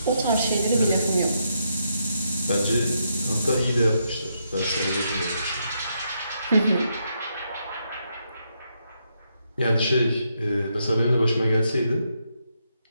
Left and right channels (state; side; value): inverted; both; correlation -0.79